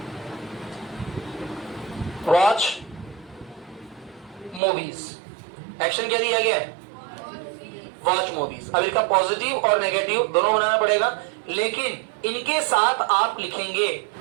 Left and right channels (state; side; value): drops out; left; at 4.6 s